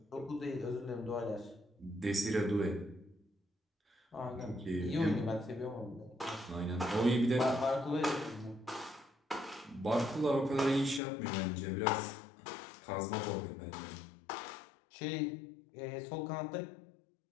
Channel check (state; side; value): drops out; right; at 11.0 s